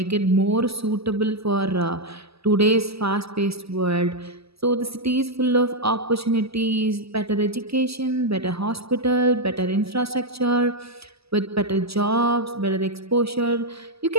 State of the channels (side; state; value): left; late; 0.77 ms